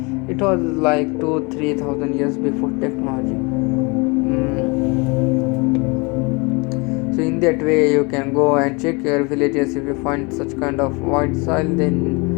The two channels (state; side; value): quieter; right; 28.7 dB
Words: It was like 2-3 thousand years before technology. So in that way you can go and check your villages. If you find such kind of white soil,